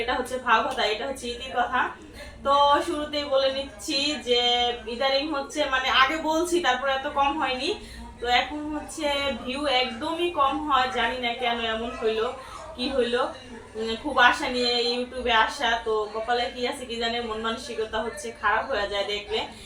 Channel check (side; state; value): both; identical; correlation 1.00